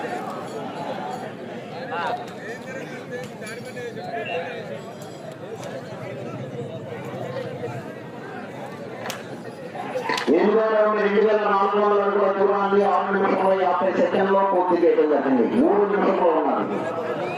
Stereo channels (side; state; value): both; identical; correlation 1.00